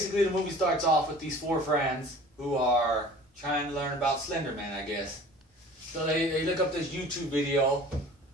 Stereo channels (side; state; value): both; normal; correlation 0.45